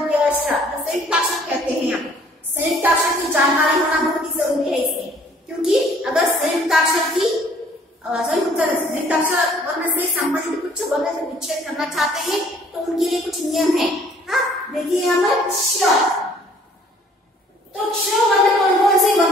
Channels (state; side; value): normal; both; correlation 0.58